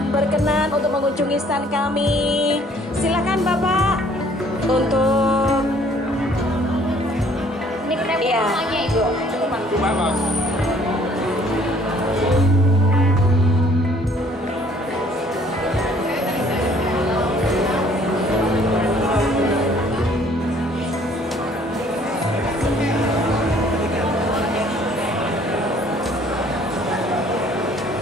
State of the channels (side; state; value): both; normal; correlation 0.58